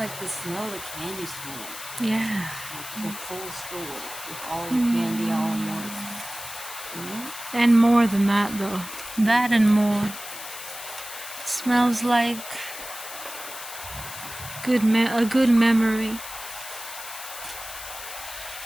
the smell of the candy store. Yeah. Like the full store with all the candy all in one. And more than that, though. That and more. It smells like a good memory.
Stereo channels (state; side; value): noise; left; hiss, 11 dB below the sound